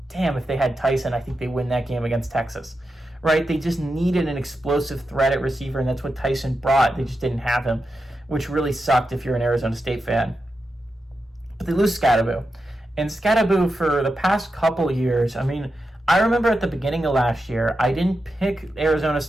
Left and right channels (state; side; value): normal; both; correlation 0.89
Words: damn, if they had Tyson, I think they win that game against Texas, right? They just needed an explosive threat at receiver, and that's what Tyson brought. They just didn't have him, which really sucked if you're an Arizona State fan. But they lose Skattebo. And Skattebo, for the past couple years, I mean, I remember at the beginning of last year, I didn't pick Arizona